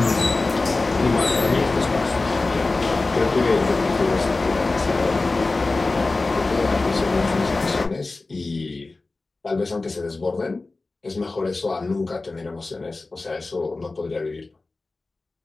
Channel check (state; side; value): quieter; right; 3.4 dB